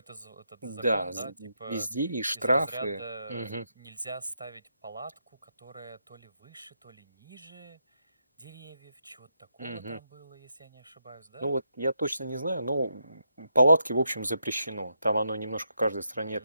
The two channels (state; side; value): inverted; both; correlation -0.82